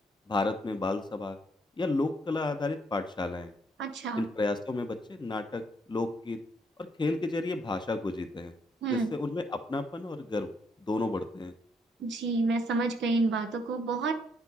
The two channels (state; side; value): normal; both; correlation 0.72